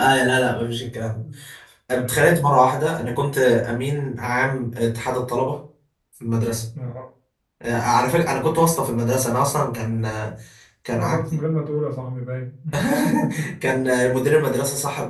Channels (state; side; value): identical; both; correlation 1.00